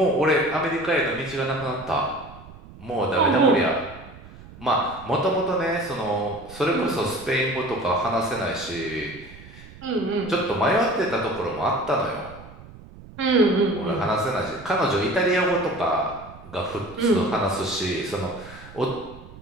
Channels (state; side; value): noise; right; rumble, 18 dB below the sound